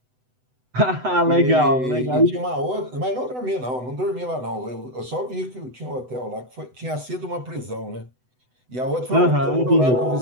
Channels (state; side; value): late; left; 8.0 ms